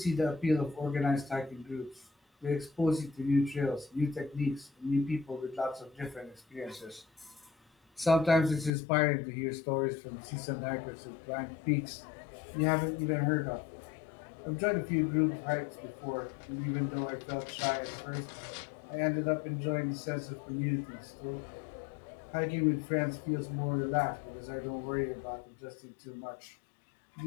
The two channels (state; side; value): drops out; right; at 8.7 s